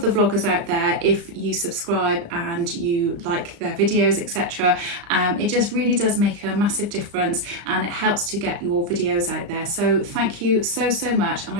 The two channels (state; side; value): late; left; 35 ms